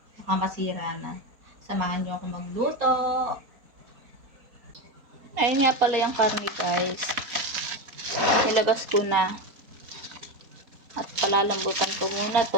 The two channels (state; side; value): late; left; 4.2 ms